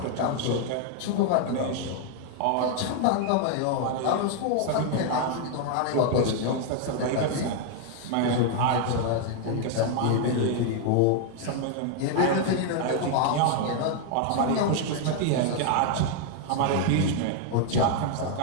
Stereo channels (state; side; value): different; both; correlation 0.00